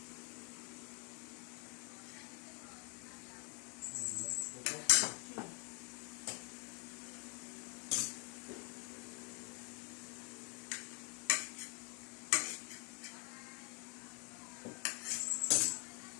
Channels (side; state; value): right; quieter; 36.1 dB